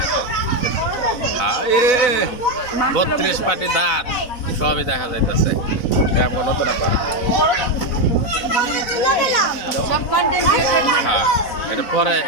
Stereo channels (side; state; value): right; late; 4.0 ms